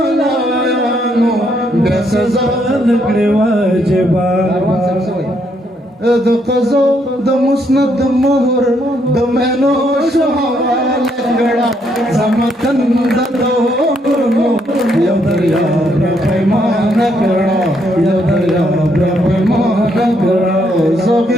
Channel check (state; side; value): normal; both; correlation 0.73